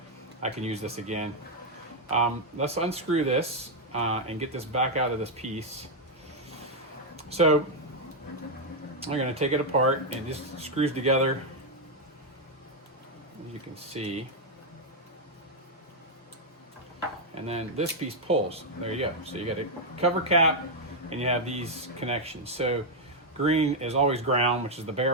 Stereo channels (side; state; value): both; normal; correlation 0.00